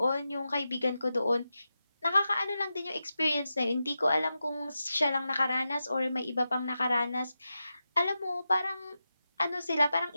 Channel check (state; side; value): inverted; both; correlation -0.90